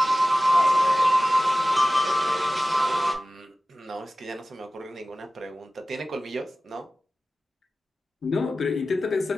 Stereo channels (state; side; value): normal; both; correlation 0.96